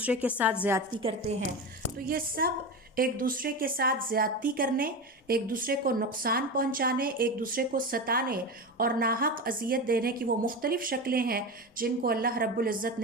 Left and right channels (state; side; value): normal; both; correlation 0.22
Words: کے ساتھ زیادتی کرتے ہیں، تو یہ سب ایک دوسرے کے ساتھ زیادتی کرنے، ایک دوسرے کو نقصان پہنچانے، ایک دوسرے کو ستانے اور ناحق اذیت دینے کی وہ مختلف شکلیں ہیں جن کو اللہ رب العزت